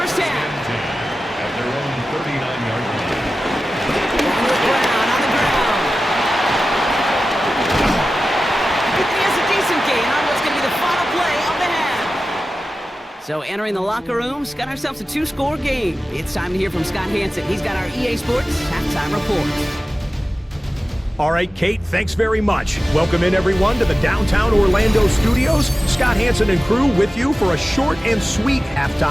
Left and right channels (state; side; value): normal; both; correlation 0.95